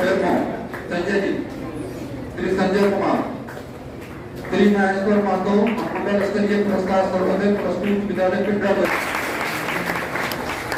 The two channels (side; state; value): both; identical; correlation 1.00